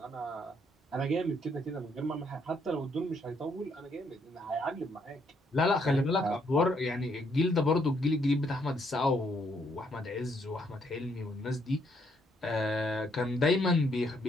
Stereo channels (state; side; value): normal; both; correlation 0.72